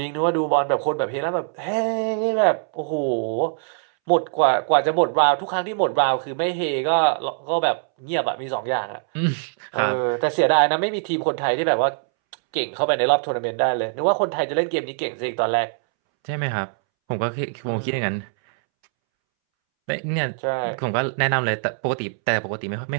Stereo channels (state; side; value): silent; left; 64 dB below the other